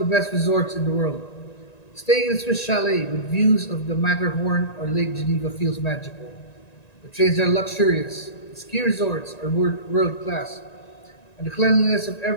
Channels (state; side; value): late; right; 1.9 ms